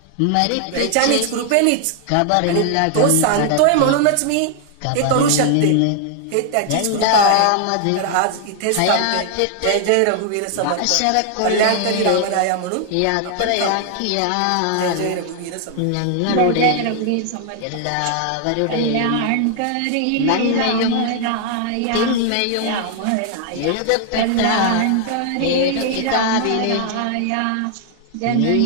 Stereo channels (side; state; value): both; different; correlation 0.00